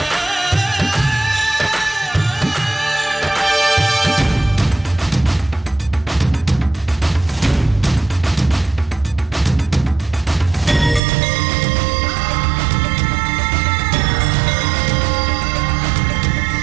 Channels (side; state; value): left; drops out; at 11.0 s